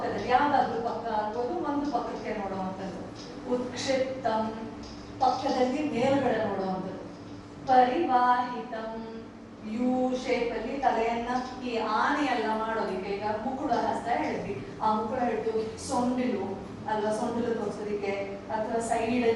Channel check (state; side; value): identical; both; correlation 1.00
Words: ಯಾವ್ದಾದ್ರು ಪಕ್ಕ ಆಗ್ಬೋದು, ಒಂದು ಪಕ್ಕಕ್ಕೆ ನೋಡುವಂಥದ್ದು. ಉತ್ಕ್ಷಿಪ್ತಂ, ಪಕ್ಕದಲ್ಲಿ ಮೇಲ್ಗಡೆ ನೋಡುವಂಥದ್ದು. ಪರಿವಾಹಿತಂ, ಯು ಶೇಪ್ ಅಲ್ಲಿ ತಲೆಯನ್ನ ಈ ಆನೆಯೆಲ್ಲ ಮಾಡೋದಿಕ್ಕೆ. ಈಗ ಮುಕುಳ ಹಸ್ತ ಹೇಳಿದ್ವಿ, ಆ ಮುಕುಳ ಹಿಡಿದು ಸೊಂಡಿಲು ಅಲ್ವಾ, ಸೊಂಡಿಲು ತೋರಿಸೋದಿಕ್ಕೆ, ಅಥವಾ ಸೈಡ್